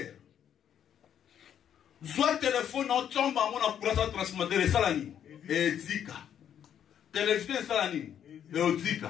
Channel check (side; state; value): right; quieter; 9.3 dB